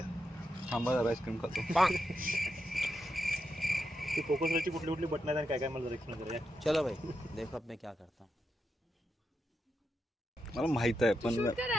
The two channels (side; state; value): both; normal; correlation 0.86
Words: थांबा जरा आईस्क्रीम खातो ती फोकसवरची कुठली कुठली बटन आहेत आणि काय काय मला जरा एक्सप्लेन करूया चलो भाई देखो अब मैं क्या करता हूँ मला माहित आहे पण